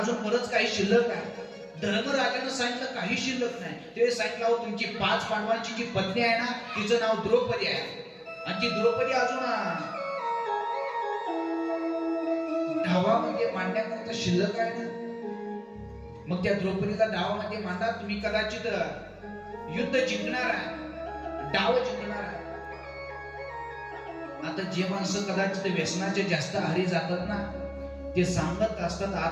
बरंच काही शिल्लक आहे. धर्मराजानं सांगितलं काही शिल्लक नाही. ते सांगितलं तुमची 5 पांडवांची जी पत्नी आहे ना तिचं नाव द्रौपदी आहे, आणि ती द्रौपदी अजून धावामध्ये मांडण्याकरता शिल्लक आहे ना, मग त्या द्रौपदीला डावामध्ये मांडा, तुम्ही कदाचित युद्ध जिंकणार आहे, डाव जिंकणार आहे. आता जे माणसं कदाचित व्यसनाचे जास्त आहारी जातात ना ते सांगत असतात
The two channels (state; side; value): identical; both; correlation 1.00